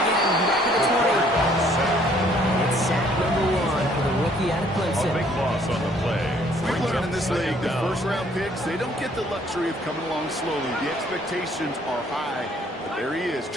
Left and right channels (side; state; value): both; normal; correlation 0.62